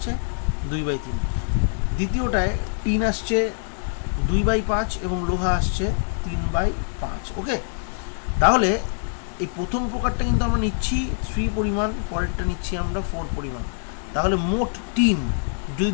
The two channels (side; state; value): right; silent; digital silence